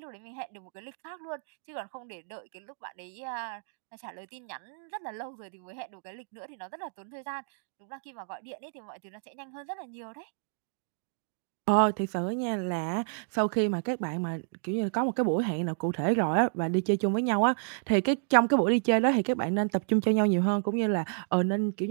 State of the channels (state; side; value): silent; left; digital silence